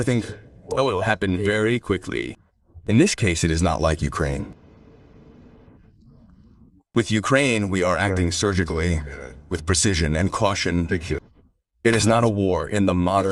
will happen very quickly. In this case, it is not like Ukraine. With Ukraine, we are acting surgically, with precision and caution. It is not a war in the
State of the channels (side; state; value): both; identical; correlation 1.00